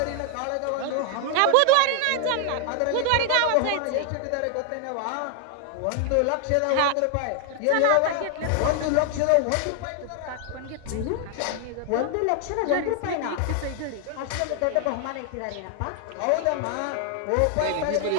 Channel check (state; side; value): different; both; correlation 0.00